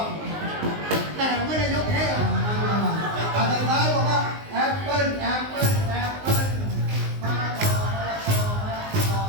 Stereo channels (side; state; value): left; late; 19 ms